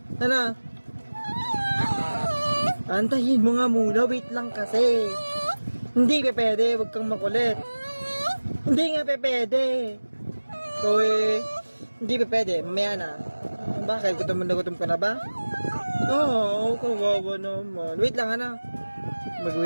Ano? Antayin mo nga muna. Wait lang kasi. Hindi pa pwede. Huwag kang makulit. Hindi nga pa pwede. So hindi pa pwede. Mamaya na. Bakit? Gutom ka na ba? Oo, kawawa naman. Wait lang, ano?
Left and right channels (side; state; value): both; inverted; correlation -1.00